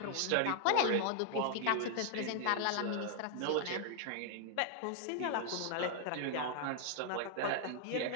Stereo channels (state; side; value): different; both; correlation -0.01